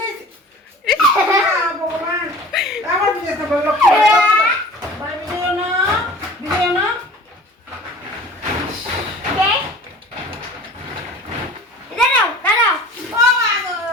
ভগবান আমার বিদায় তো বললো বাই ভিডিও না কে দাঁড়াও দাঁড়াও ও মা গো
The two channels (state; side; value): normal; both; correlation 0.43